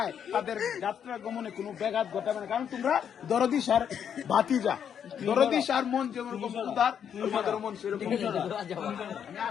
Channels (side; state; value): right; quieter; 8.3 dB